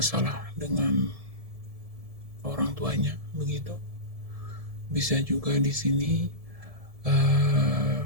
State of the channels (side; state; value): left; late; 1.7 ms